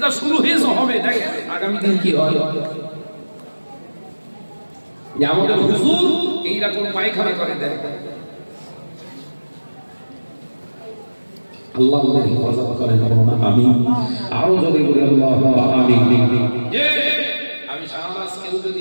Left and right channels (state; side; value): inverted; both; correlation -1.00